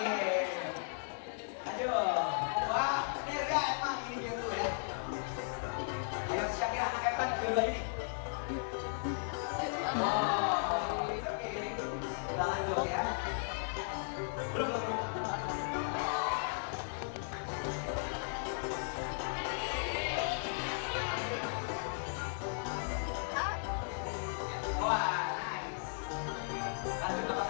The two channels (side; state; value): right; silent; digital silence